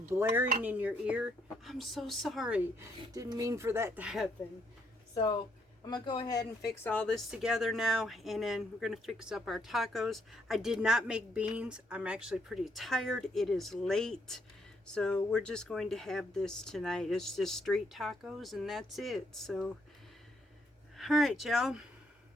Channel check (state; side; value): normal; both; correlation 0.73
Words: blaring in your ear, I'm so sorry. Didn't mean for that to happen. So I'm going to go ahead and fix all this together now. And then we're going to fix up our tacos. I did not make beans. I'm actually pretty tired. It is late. So we're just going to have this tonight. It's just street tacos and that's it. So, alright y'all.